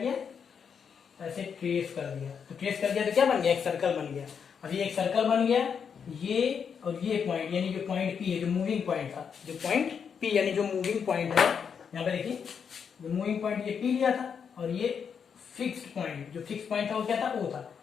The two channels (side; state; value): right; quieter; 6.9 dB